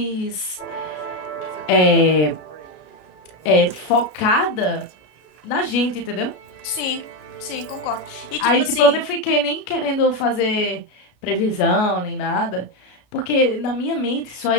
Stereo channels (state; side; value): late; right; 33 ms